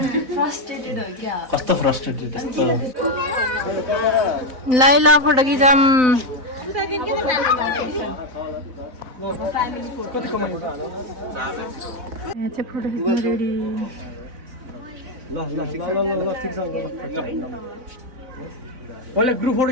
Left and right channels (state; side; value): late; left; 4.0 ms